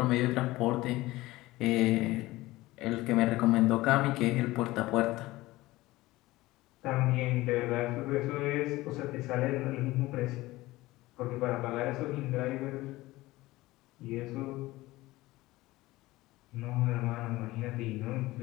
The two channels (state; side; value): quieter; right; 18.7 dB